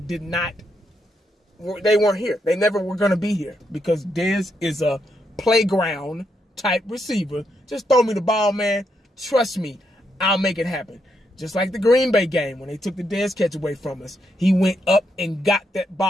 they weren't here. They never were going to be here because Dez is a playground type receiver. Just throw me the ball, man. Trust me, I'll make it happen. Just like the Green Bay game when they took the Dez catch away from us. He went up and got that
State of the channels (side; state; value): both; normal; correlation 0.80